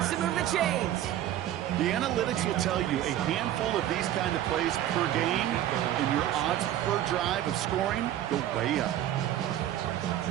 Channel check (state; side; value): quieter; left; 12.4 dB